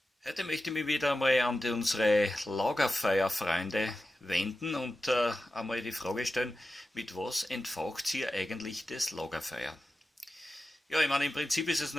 Heute möchte ich mich wieder einmal an unsere Lagerfeuerfreunde wenden und einmal die Frage stellen, mit was entfacht ihr eigentlich das Lagerfeuer? Ja, ich meine, im Prinzip ist es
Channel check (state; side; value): normal; both; correlation 0.92